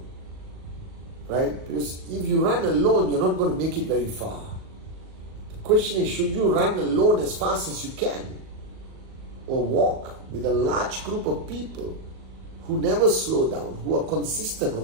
Right? Because if you run alone, you're not going to make it very far. The question is, should you run alone as fast as you can? Or walk with a large group of people who never slow down, who are consistent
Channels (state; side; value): late; left; 38 ms